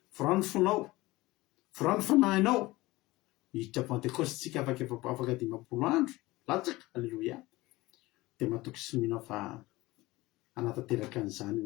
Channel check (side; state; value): right; quieter; 19.8 dB